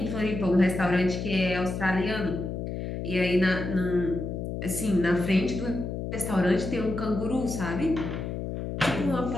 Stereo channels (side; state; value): left; noise; hum, 5 dB below the sound